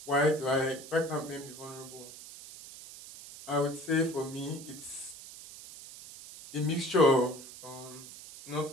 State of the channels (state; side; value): noise; right; hiss, 15 dB below the sound